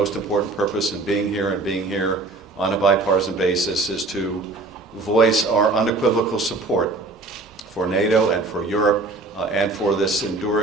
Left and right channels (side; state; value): left; quieter; 3.5 dB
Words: important purpose in being here on a bipartisan basis is to voice our unequivocal support for NATO and for Europe and for this